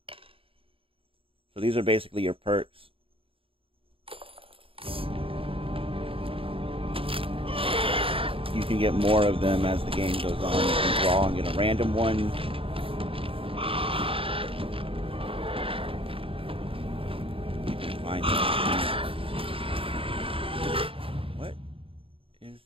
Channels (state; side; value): late; left; 0.27 ms